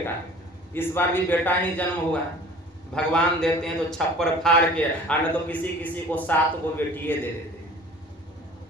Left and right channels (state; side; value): normal; both; correlation 0.46